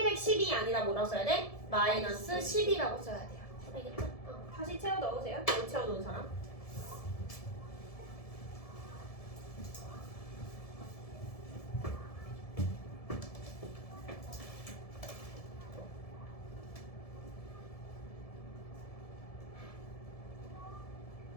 아니라 뭐라고 써야 돼? 마이너스 10이라고 써야 돼요. 알겠죠? 다시 채워 넣으세요. 못 채워 놓은 사람.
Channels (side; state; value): right; late; 1.7 ms